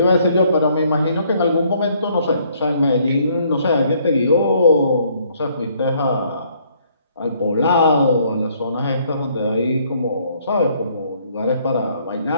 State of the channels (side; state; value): both; inverted; correlation -0.65